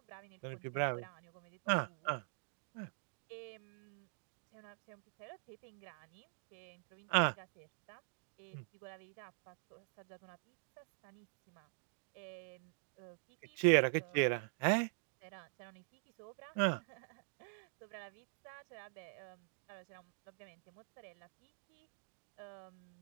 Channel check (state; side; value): silent; left; digital silence